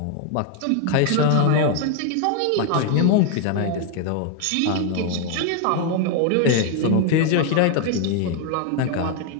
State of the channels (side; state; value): both; different; correlation 0.00